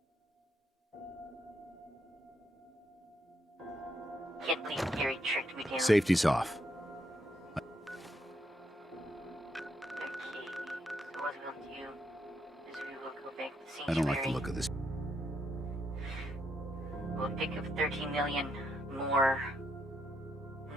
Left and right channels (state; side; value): normal; both; correlation 0.77